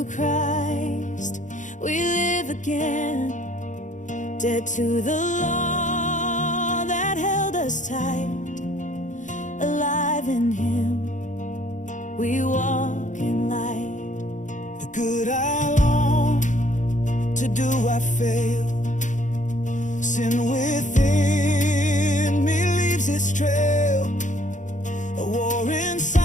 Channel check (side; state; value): right; late; 0.36 ms